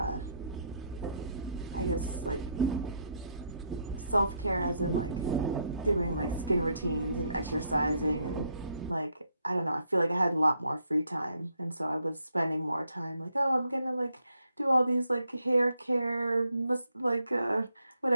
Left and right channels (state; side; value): inverted; both; correlation -0.74